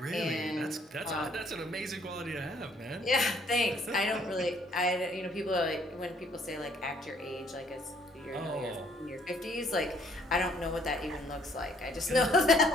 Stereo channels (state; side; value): normal; both; correlation 0.63